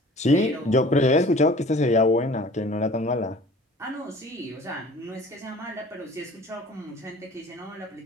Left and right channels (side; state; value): both; normal; correlation 0.47